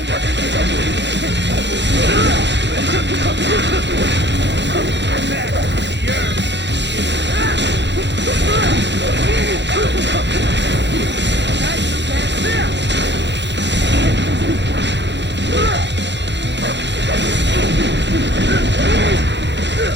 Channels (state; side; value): late; left; 0.52 ms